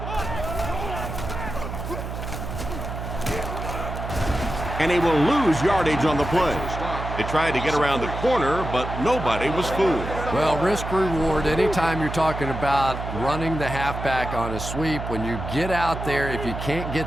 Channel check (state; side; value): noise; right; hum, 7 dB below the sound